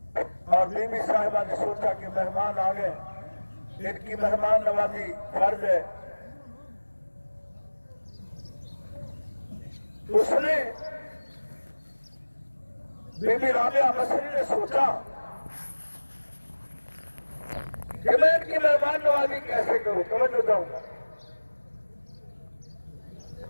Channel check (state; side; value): inverted; both; correlation -1.00